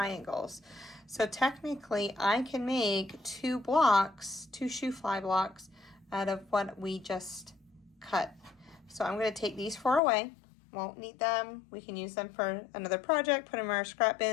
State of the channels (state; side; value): drops out; right; at 10.0 s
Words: So technically I can make 2 Shoo Fly blocks out of what we just cut. So I'm going to take these 4 away. Won't need them. We can use them for another project, put them in our scrap